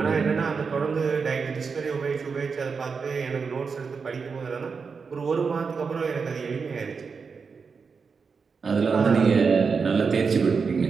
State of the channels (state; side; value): quieter; left; 5.3 dB